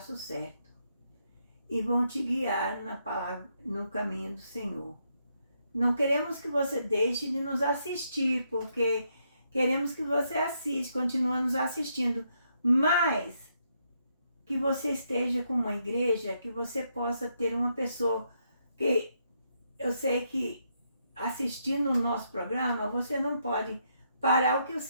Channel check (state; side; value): inverted; both; correlation -0.78